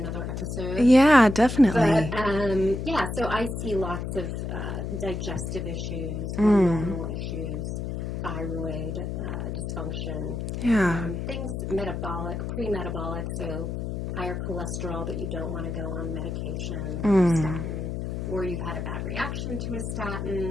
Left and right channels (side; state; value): left; noise; hum, 4 dB below the sound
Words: episode. Yeah, definitely. But, yeah, so I see lots of digestive issues, hormonal issues, thyroid dysfunction. Yeah. Things metabolic, pre-metabolic, so higher cholesterol that you don't want to go on medication, statin, or you've had a bad reaction to a